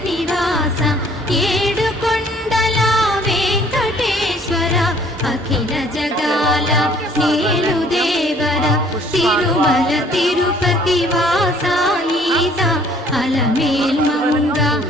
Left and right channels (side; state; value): both; normal; correlation 0.58